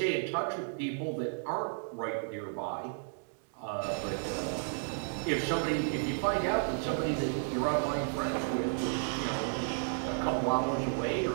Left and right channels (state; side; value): silent; left; digital silence